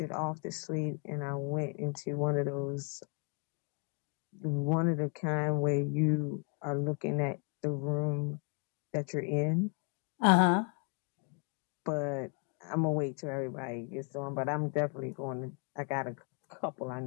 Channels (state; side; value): quieter; right; 39.0 dB